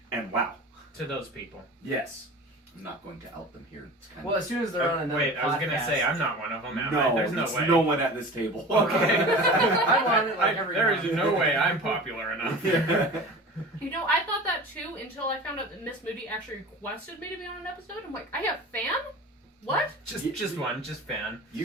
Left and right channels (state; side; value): normal; both; correlation 0.37